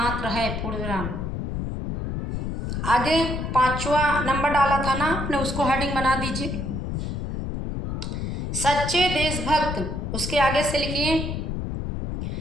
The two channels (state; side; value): noise; left; rumble, 3 dB below the sound